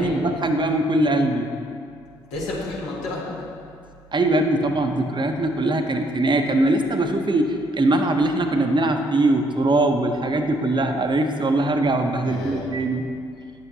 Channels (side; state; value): both; normal; correlation 0.69